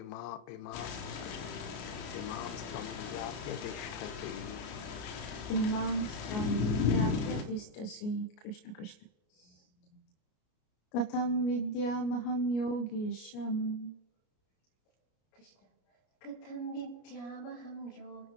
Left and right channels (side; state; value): right; late; 33 ms